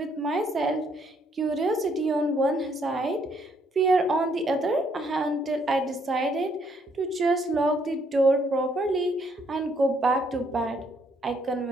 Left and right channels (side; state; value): both; normal; correlation 0.70